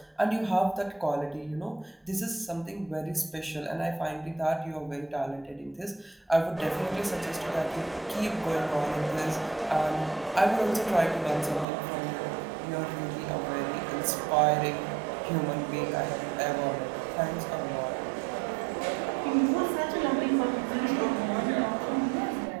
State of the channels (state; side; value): drops out; left; at 11.7 s